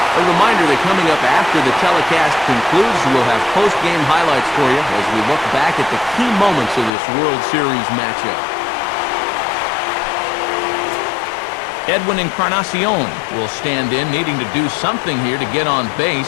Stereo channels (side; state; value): right; drops out; at 6.9 s